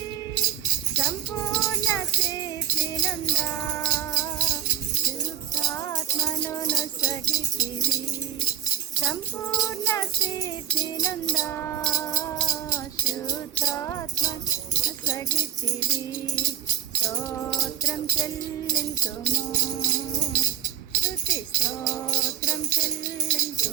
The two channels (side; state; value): left; quieter; 9.8 dB